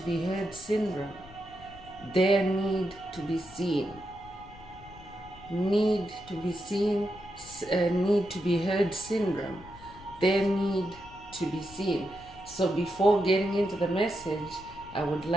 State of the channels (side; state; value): left; noise; rumble, 20 dB below the sound